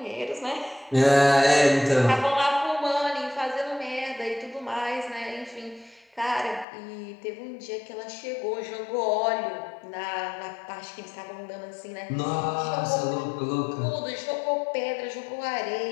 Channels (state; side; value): drops out; right; at 6.7 s